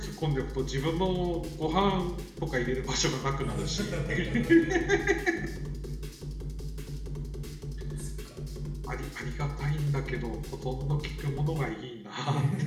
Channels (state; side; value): identical; both; correlation 1.00